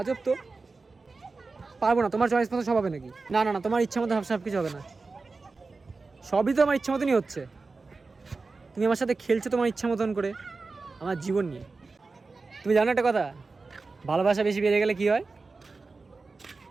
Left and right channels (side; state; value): left; quieter; 4.0 dB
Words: তো। পারবো না, তোমার চয়েস মতো সব হবে নাকি? না না না, তোমার ইচ্ছা মতো সব কিছু হবে না, সবই তো আমার ইচ্ছা মতনই হচ্ছে। তুমি আমার সাথে খেলছো তোমার ইচ্ছা মতন করে, আমার জীবন নিয়ে। তুমি জানো একটা কথা, ভালোবাসা বেশি বেড়ে গেলে কি হয়?